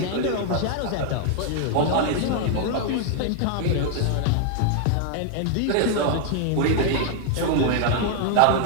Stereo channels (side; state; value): both; different; correlation 0.00